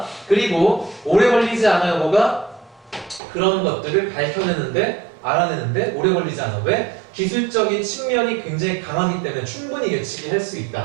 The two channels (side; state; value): left; drops out; at 3.2 s